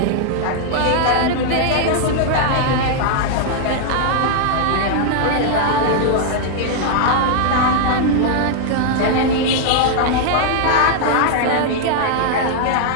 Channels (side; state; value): both; different; correlation -0.01